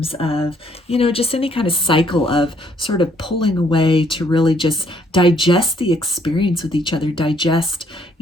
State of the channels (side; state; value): both; normal; correlation 0.67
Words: of, just any kind of cycle of sort of pulling away to really just digest the experience with each other, digest,